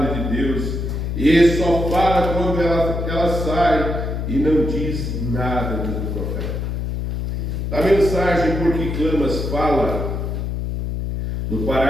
de Deus. E ele só fala quando ela sai e não diz nada, diz o profeta. A mensagem Por que Clamas fala, no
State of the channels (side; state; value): left; noise; hum, 3 dB below the sound